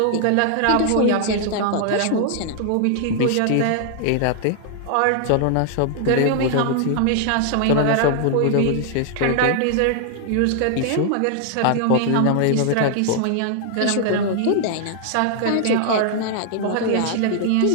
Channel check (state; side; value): different; both; correlation 0.00